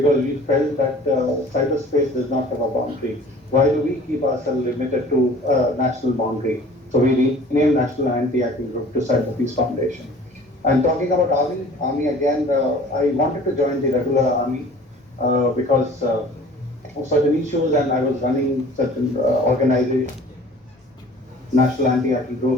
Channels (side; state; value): both; normal; correlation 0.48